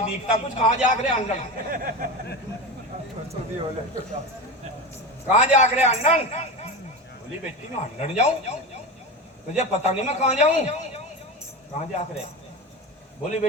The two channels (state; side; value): normal; both; correlation 0.24